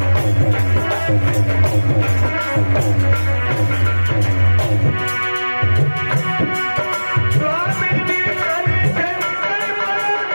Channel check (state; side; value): inverted; both; correlation -1.00